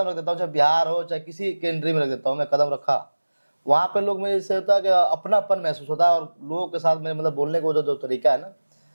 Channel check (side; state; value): both; inverted; correlation -1.00